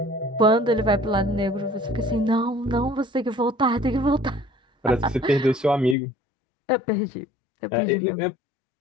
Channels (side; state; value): right; drops out; at 6.0 s